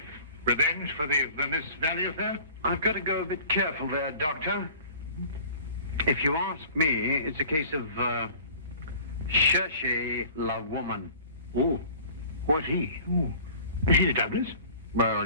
Revenge for the Vermissa Valley affair? I've got to go a bit careful there, Doctor. If you ask me, it's a case of Cherchez la woman. Oh, what's he? Oh, is he the Douglas? Well,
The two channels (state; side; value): inverted; both; correlation -0.47